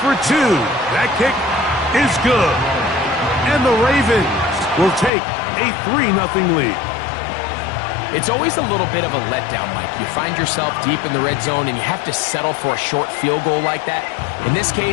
2. That kick is good. And the Ravens will take a 3-0 lead. It's always a little bit of a letdown, Mike. You find yourself deep in the red zone, and you have to settle for a short field goal like that. In this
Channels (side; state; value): right; drops out; at 5.1 s